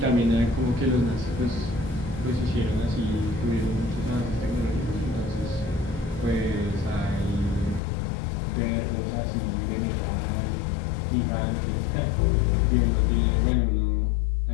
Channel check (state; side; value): drops out; right; at 7.8 s